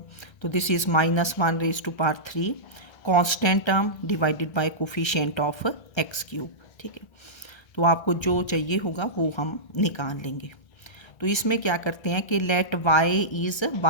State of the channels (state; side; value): late; right; 1.3 ms